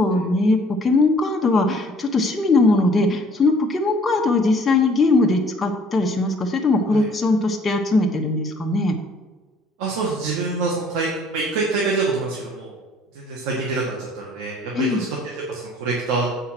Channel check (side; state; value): both; normal; correlation 0.57